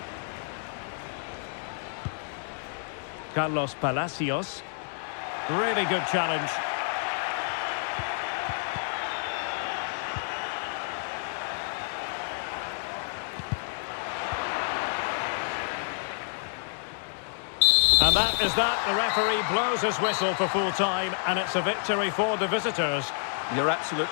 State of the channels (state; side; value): silent; right; digital silence